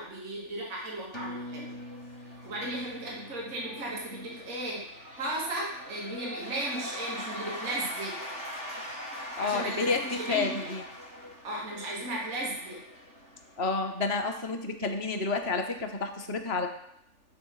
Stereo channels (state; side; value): late; left; 3.4 ms